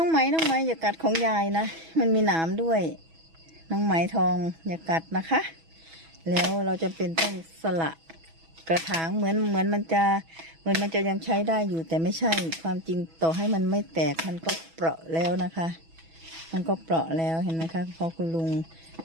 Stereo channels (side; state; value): left; late; 6.1 ms